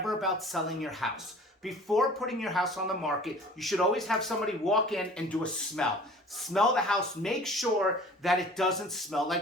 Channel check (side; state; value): both; normal; correlation 0.46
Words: about selling your house, before putting your house on the market, you should always have somebody walk in and do a smell. Smell the house. Make sure that it doesn't smell